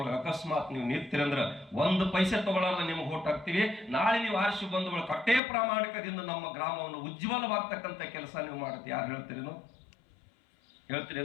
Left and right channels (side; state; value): right; drops out; at 5.4 s